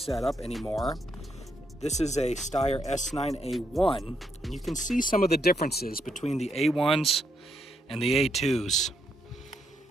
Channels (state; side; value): normal; both; correlation 0.77